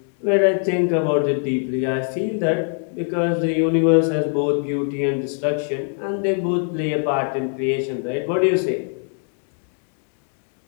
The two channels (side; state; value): right; silent; 57 dB below the other